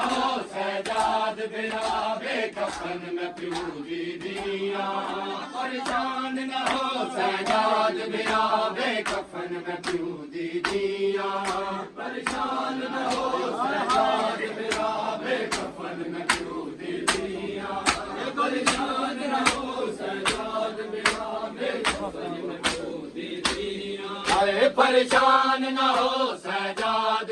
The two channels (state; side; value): identical; both; correlation 1.00